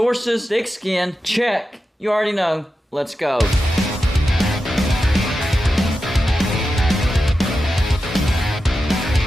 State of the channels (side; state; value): both; normal; correlation 0.91